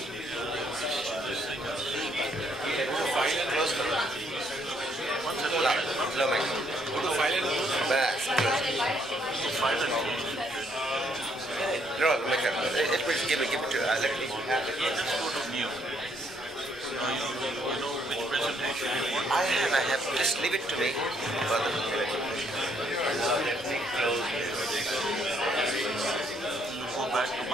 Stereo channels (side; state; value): both; normal; correlation 0.70